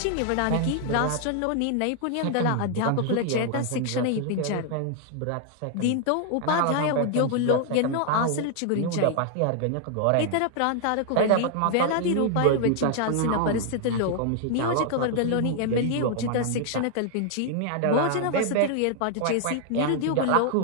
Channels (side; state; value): both; different; correlation 0.00